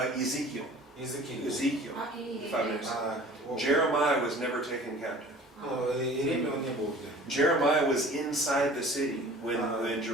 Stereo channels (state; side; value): normal; both; correlation 0.45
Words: Ezekiel. Ezekiel. А Иеремия? 596. Jeremiah was never taken captive. Иеремия он не был где. Jeremiah was inside the city when